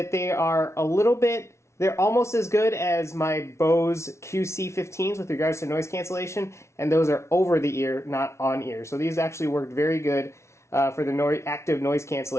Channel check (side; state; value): right; late; 0.13 ms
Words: they are they're almost as good as my Bose QC15s with regards to noise cancellation, and those are over the ear, not on ear. So these actually worked very good for the active noise